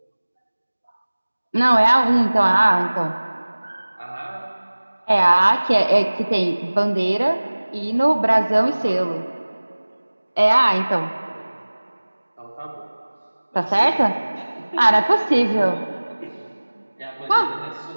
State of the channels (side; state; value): both; inverted; correlation -1.00